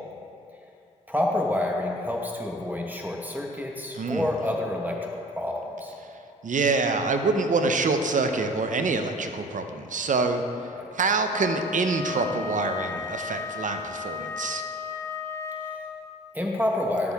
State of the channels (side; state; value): both; normal; correlation 0.45